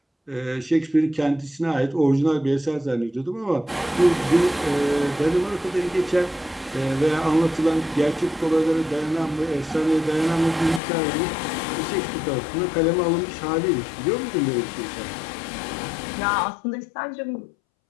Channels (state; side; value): drops out; right; at 10.8 s